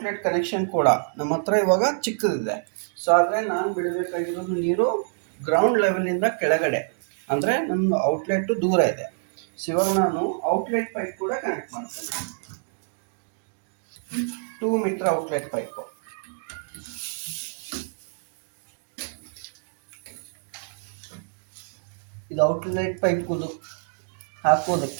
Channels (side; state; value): left; silent; digital silence